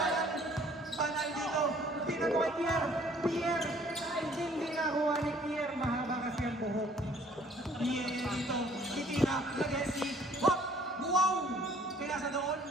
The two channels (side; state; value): both; normal; correlation 0.58